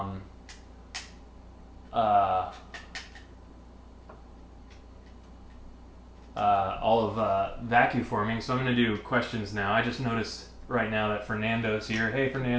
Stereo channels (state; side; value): identical; both; correlation 1.00